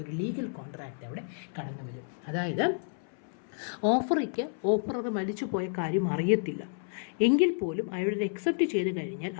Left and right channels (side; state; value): right; silent; 57 dB below the other